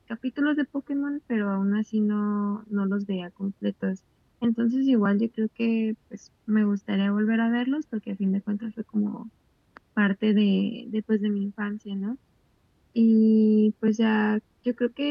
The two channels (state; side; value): identical; both; correlation 1.00